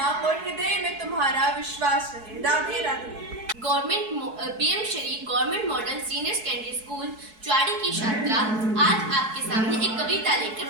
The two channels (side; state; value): left; late; 4.6 ms